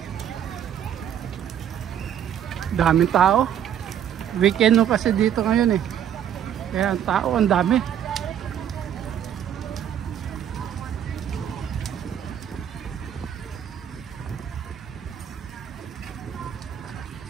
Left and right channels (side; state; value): left; quieter; 9.6 dB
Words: Daming tao. Weekend no kasi dito ngayon eh. Kaya ang tao ang dami.